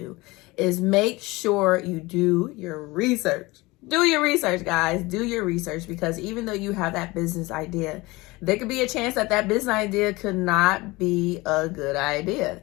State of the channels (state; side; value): quieter; right; 22.0 dB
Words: is make sure you do your research. Do your research, guys. Do your research, because even though you have that business idea, there could be a chance that that business idea could not be a good idea.